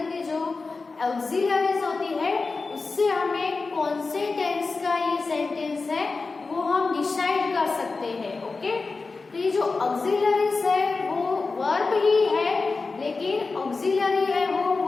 के जो ऑक्सिलरीज होती है उससे हमें कौन से टेंस का ये सेंटेंस है वो हम डिसाइड कर सकते हैं. ओके, तो ये जो ऑक्सिलरीज है वो वर्ब ही है, लेकिन ऑक्सिलरी है वो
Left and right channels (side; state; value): right; quieter; 4.0 dB